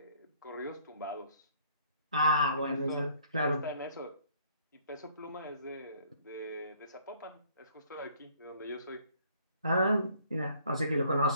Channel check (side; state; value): both; inverted; correlation -0.60